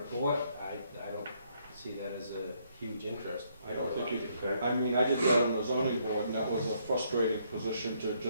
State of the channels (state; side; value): inverted; both; correlation -0.71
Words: I don't see that as a huge interest. I don't think you Okay. I mean, I did that on the zoning board, and that was a frustrating position to